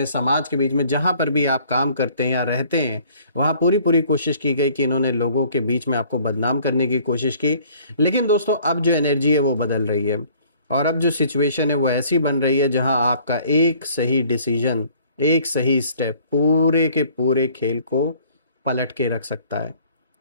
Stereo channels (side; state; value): both; inverted; correlation -0.56